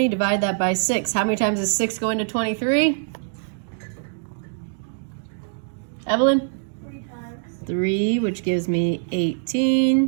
Divide that by 6. How many times does 6 go into 23? Evelyn? 3 times. 3, which gives me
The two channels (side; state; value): left; silent; digital silence